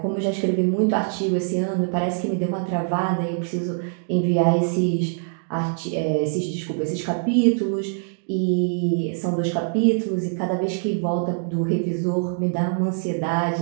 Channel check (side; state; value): left; silent; 63 dB below the other